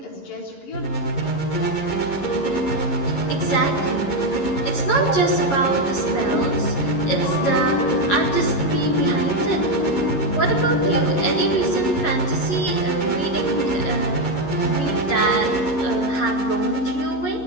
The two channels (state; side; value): late; right; 11 ms